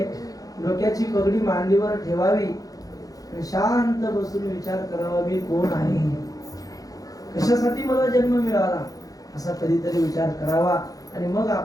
डोक्याची पगडी मांडीवर ठेवावी, शांत बसून विचार करावा मी कोण आहे, कशासाठी मला जन्म मिळाला, असा कधीतरी विचार करावा. आणि मग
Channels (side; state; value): right; late; 0.17 ms